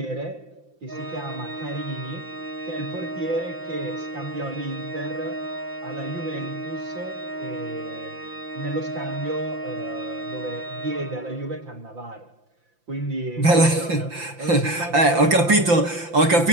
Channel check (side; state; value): left; late; 5.8 ms